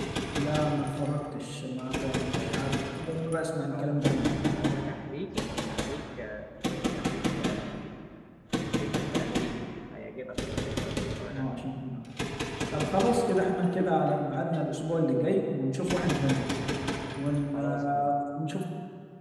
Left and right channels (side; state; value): both; identical; correlation 1.00